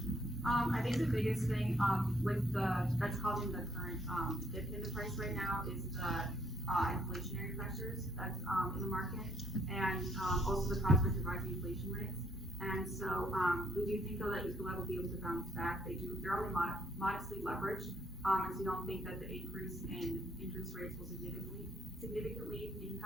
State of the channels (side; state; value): both; normal; correlation 0.70